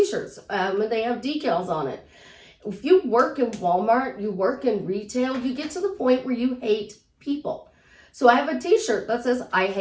And they have decals on it. If you work in Walmart, you work in retail, you get to the point where you hate people. So I have a t-shirt that says, I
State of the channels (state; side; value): identical; both; correlation 1.00